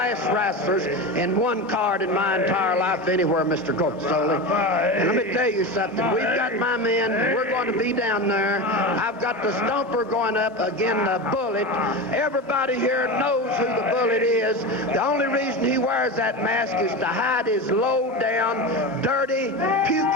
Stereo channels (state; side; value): normal; both; correlation 0.23